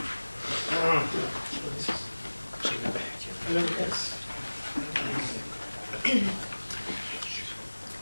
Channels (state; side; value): inverted; both; correlation -1.00